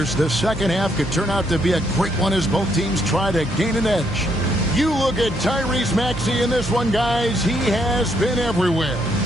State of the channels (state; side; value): normal; both; correlation 0.73